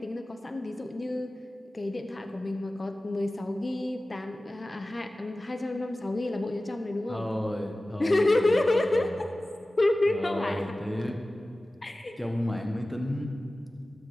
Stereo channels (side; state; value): both; normal; correlation 0.97